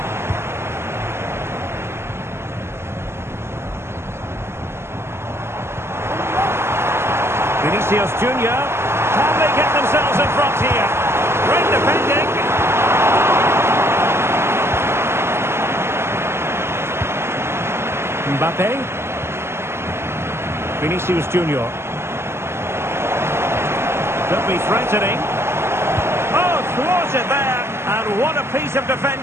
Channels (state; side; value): late; left; 0.12 ms